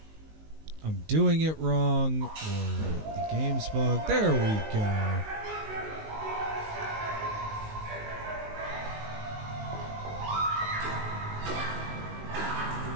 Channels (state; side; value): late; left; 19 ms